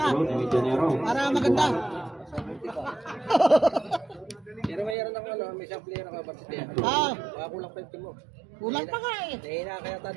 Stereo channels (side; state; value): left; drops out; at 5.0 s